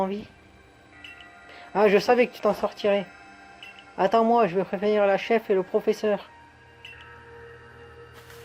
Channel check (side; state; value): both; identical; correlation 1.00